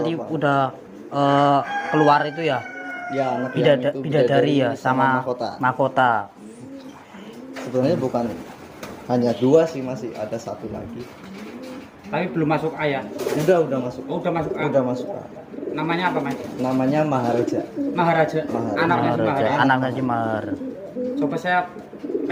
tua, Pak. udah keluar itu ya. Ya anak yang itu Bidadari ya sama mahkota. mahkota. Sebenarnya bukan hanya 2 sih, masih ada 1 lagi. Tapi belum masuk A ya. Udah masuk. Oh, udah masuk A. Udah masuk. Namanya apa Mas? Namanya Maharaja. Maharaja. Maharaja. Anaknya si Mahar. Anaknya si Mahar. Coba saya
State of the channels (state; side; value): identical; both; correlation 1.00